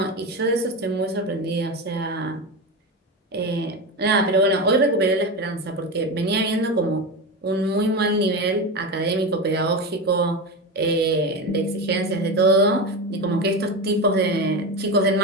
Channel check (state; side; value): normal; both; correlation 0.19